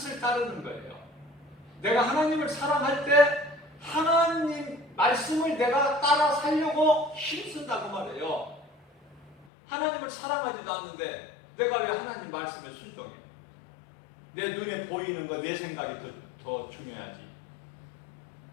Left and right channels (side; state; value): right; drops out; at 9.5 s